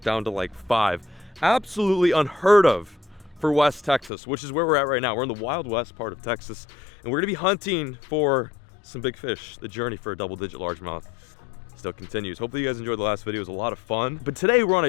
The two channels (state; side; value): drops out; right; at 4.1 s